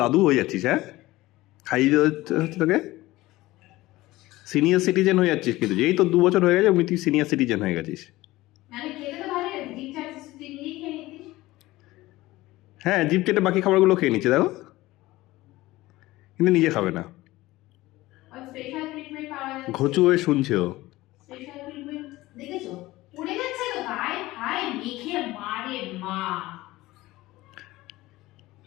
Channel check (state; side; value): quieter; right; 18.2 dB